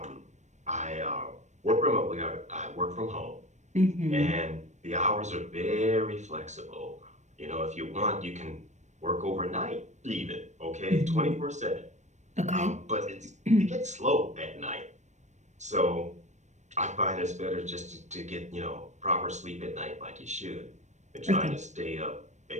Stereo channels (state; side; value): late; left; 0.34 ms